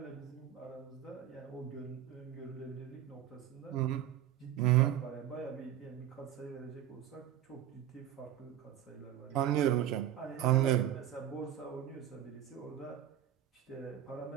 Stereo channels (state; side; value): quieter; left; 11.3 dB